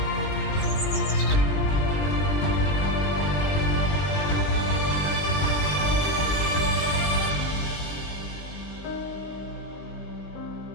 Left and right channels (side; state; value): right; late; 20 ms